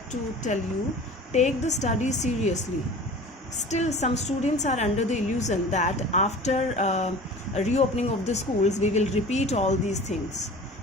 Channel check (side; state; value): both; normal; correlation 0.40